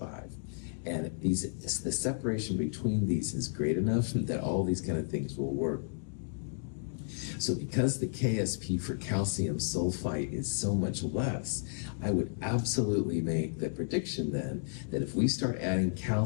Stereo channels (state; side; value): silent; right; digital silence